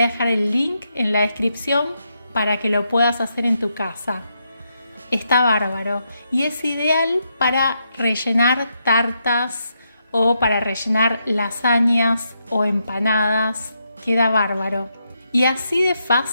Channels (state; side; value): inverted; both; correlation -0.81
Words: dejar el link en la descripción para que lo puedas hacer en tu casa. Está bárbaro y es ideal para rellenar tartas o para rellenar lasañas o empanadas, queda bárbaro. Y así de